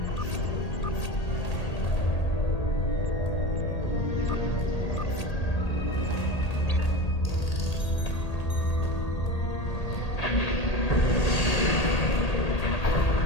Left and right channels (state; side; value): late; right; 1.8 ms